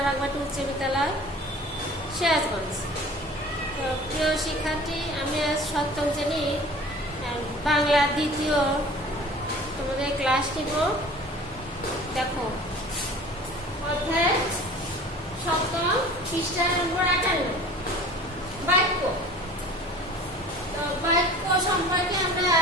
বাগমাটি উচ্চ বিদ্যালয়, সিরাজগঞ্জ। তো প্রিয় শিক্ষার্থী, আমি আজ সপ্তম শ্রেণীর বাংলা দ্বিতীয় তোমাদের ক্লাস নিব। দেখো, অধ্যায় সপ্তম, পৃষ্ঠা নম্বর 58, বাক্য। তো বাক্য সম্পর্কে আমরা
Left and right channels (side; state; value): both; normal; correlation 0.44